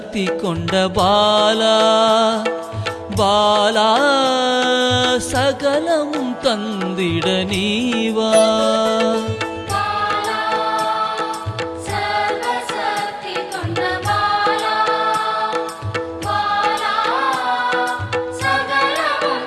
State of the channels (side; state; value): both; identical; correlation 1.00